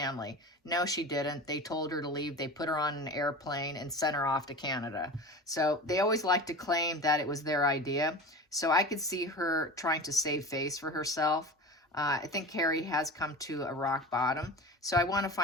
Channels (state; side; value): normal; both; correlation 0.32